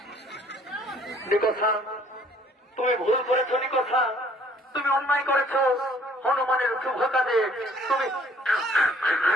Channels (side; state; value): both; normal; correlation 0.59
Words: নিকোষা, তুমি ভুল করেছো। নিকোষা, তুমি অন্যায় করেছো। হনুমানের শুভ কাজে তুমি